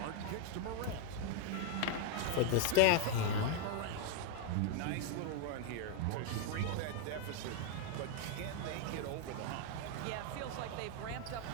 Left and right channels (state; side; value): different; both; correlation 0.01